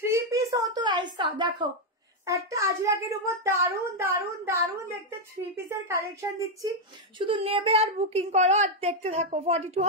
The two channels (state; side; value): normal; both; correlation 0.01